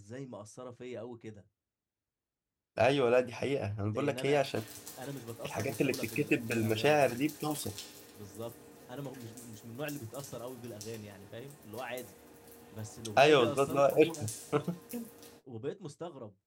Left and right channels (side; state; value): both; identical; correlation 1.00